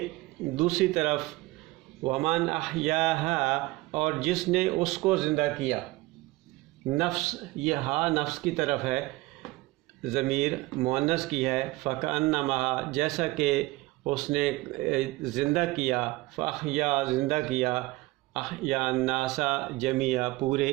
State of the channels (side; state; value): left; quieter; 20.6 dB